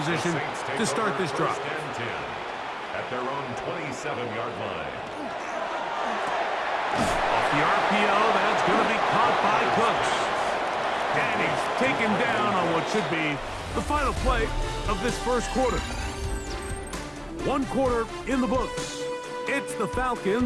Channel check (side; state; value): both; identical; correlation 1.00